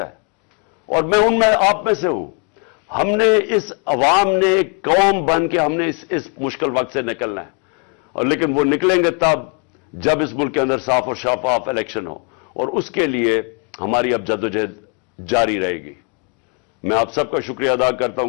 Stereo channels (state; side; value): quieter; right; 36.0 dB